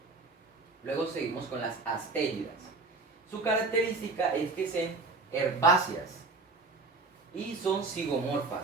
Luego seguimos con las astéridas. Su característica es que son herbáceas y son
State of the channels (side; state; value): left; quieter; 3.7 dB